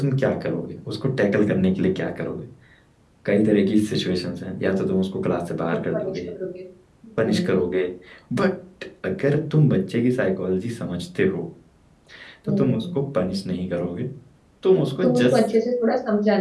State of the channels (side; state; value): both; identical; correlation 1.00